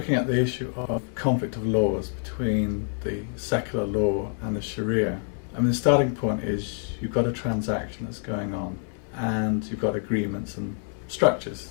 at the issue of conflict of laws between the secular law and the Sharia, I mean, the starting point is you've got a transaction that's going on and you've got agreements and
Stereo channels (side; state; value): right; silent; 56 dB below the other